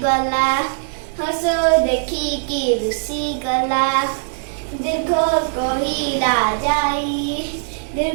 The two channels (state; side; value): silent; left; digital silence